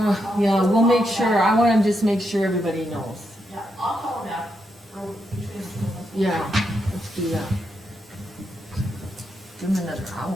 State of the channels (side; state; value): both; normal; correlation 0.82